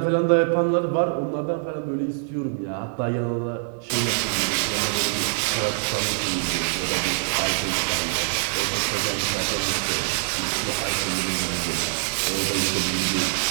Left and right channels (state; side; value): silent; left; 62 dB below the other